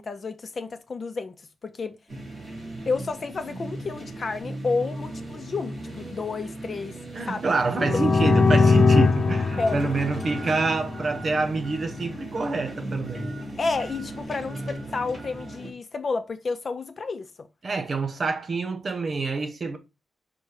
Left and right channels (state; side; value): normal; both; correlation 0.88